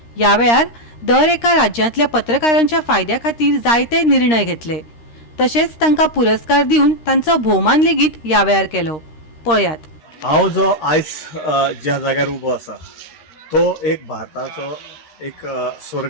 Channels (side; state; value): right; late; 13 ms